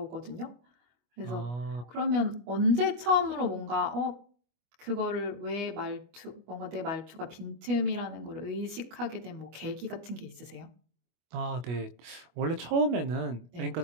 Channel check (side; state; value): left; late; 25 ms